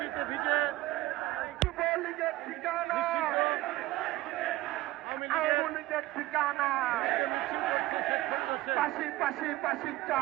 যুবলীগের ঠিকানা, আওয়ামী লীগের ঠিকানা। পাশি পাশি পাশি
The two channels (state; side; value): quieter; left; 16.9 dB